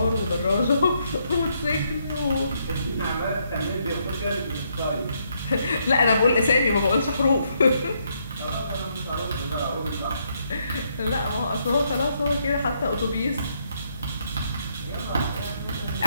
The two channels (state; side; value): inverted; both; correlation -0.74